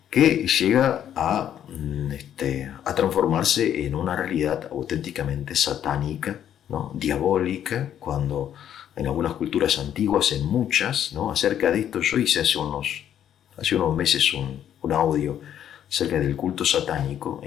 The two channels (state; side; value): quieter; right; 10.1 dB